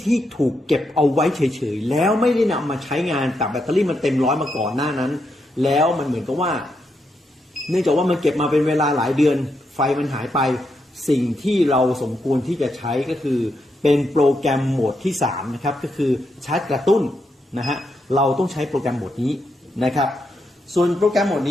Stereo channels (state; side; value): normal; both; correlation 0.82